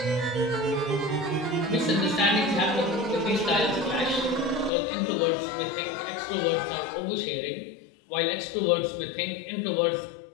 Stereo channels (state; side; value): drops out; right; at 4.7 s